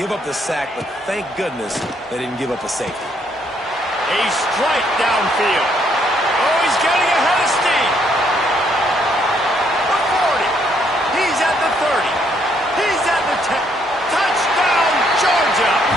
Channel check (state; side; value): normal; both; correlation 0.70